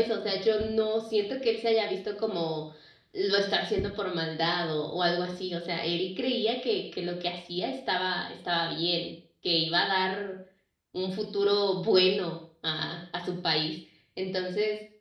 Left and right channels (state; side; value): identical; both; correlation 1.00